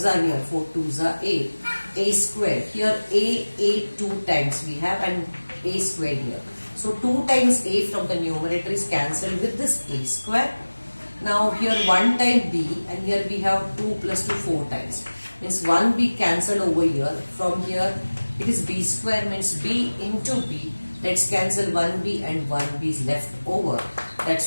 are here, 4 2s are 8. A square, here a 2 times we have and a square here. So 2 times a from the numerator is cancelled with this a square. Now here 1 time b and here we have 2 plus 2 4 times. Means 1 b cancelled over here. From here it is b square, means b into b. Let's cancel 1b and 1b is left over.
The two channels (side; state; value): both; inverted; correlation -1.00